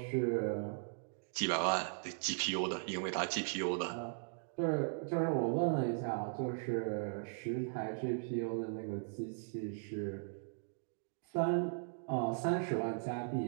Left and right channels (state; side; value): silent; left; digital silence